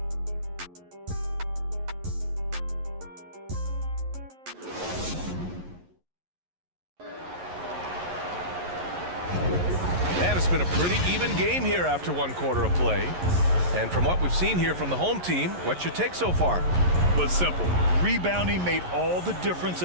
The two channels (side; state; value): left; late; 11 ms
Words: It's been a pretty even game here after one quarter of play. And from what we've seen here from the home team, what's your take so far? Well, it's simple. Rebounding made all the difference